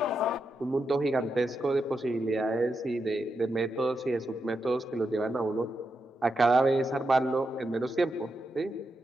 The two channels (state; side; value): normal; both; correlation 0.85